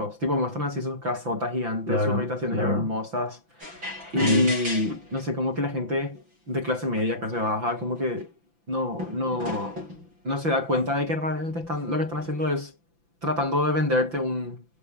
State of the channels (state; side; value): late; left; 5.9 ms